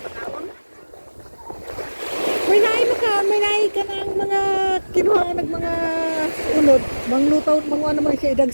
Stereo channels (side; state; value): both; inverted; correlation -1.00